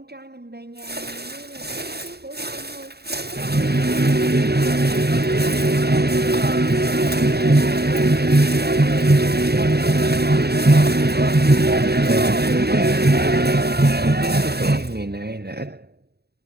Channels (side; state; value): left; late; 0.47 ms